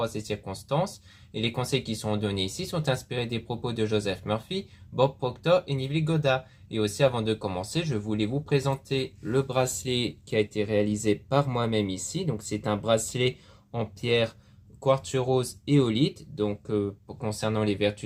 à ces circonstances. Et les conseils qui sont donnés ici sont inspirés des propos de Joseph Murphy, Bob Proctor et Neville Goddard. Et aussi avant de commencer, je voulais vous présenter le bracelet qui a été réalisé par moi-même ici. Donc c'est un bracelet en pierre quartz rose éolite. Donc concernant les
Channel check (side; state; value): both; identical; correlation 1.00